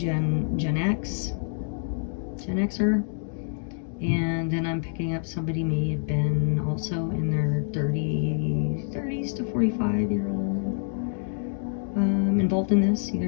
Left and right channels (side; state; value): right; silent; digital silence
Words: Xer, and then I'm picking up somebody may have been also in their 30s to 45-year-old, involved in this, either